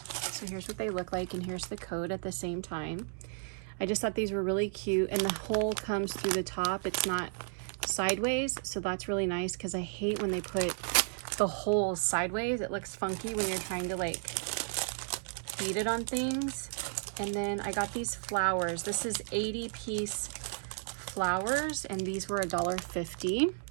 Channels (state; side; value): silent; left; digital silence